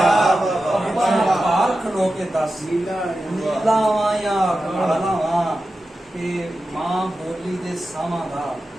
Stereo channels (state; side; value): normal; both; correlation 0.92